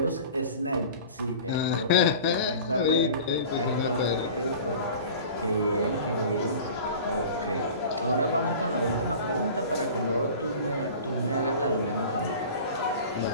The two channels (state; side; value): inverted; both; correlation -0.40